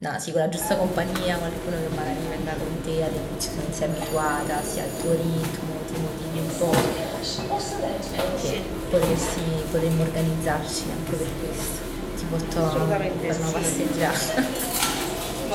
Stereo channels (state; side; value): identical; both; correlation 1.00